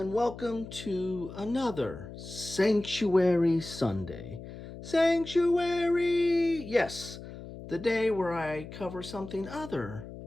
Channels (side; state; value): left; noise; hum, 13 dB below the sound